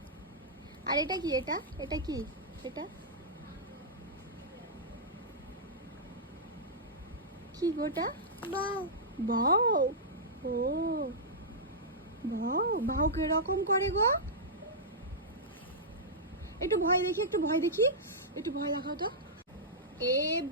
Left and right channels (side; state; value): both; normal; correlation -0.12